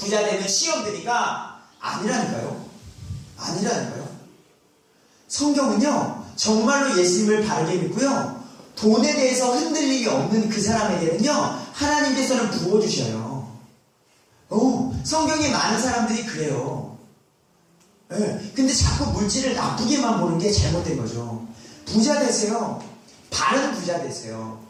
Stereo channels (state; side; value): identical; both; correlation 1.00